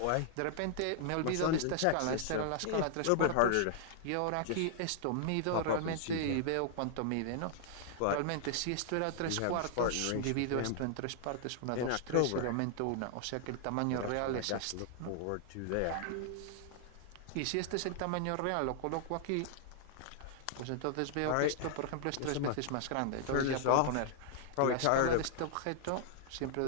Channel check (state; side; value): different; both; correlation -0.01